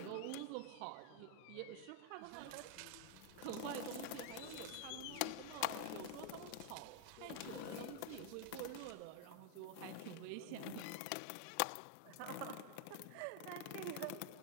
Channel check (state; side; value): different; both; correlation 0.00